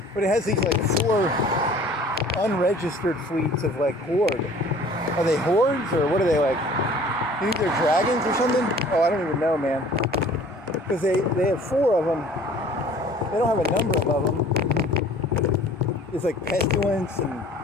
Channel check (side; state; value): both; normal; correlation 0.50